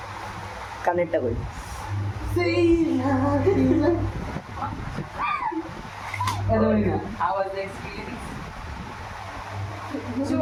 কানেরটা কই আওয়াজ এক্সপিরিয়েন্স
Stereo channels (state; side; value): identical; both; correlation 1.00